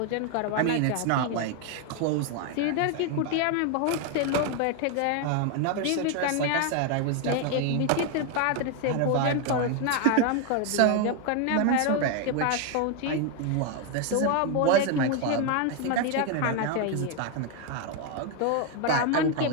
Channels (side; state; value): both; different; correlation 0.01